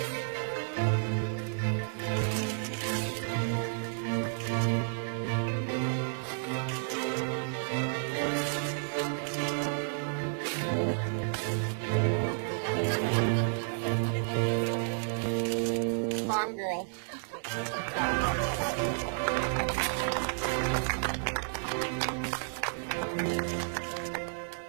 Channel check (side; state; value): left; silent; digital silence